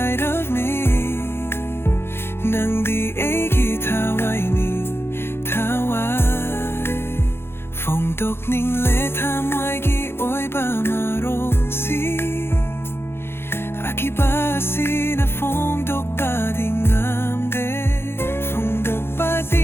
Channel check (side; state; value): right; late; 0.11 ms